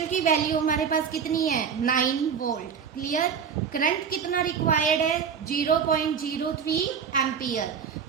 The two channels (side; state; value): left; quieter; 6.9 dB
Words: की वैल्यू हमारे पास कितनी है, 9 वोल्ट. क्लियर? करंट कितना रिक्वायर्ड है, 0.03 एम्पियर.